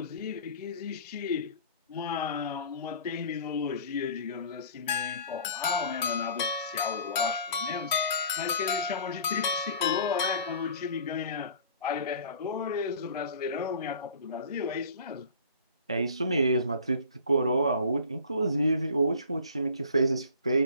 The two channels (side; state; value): both; inverted; correlation -0.46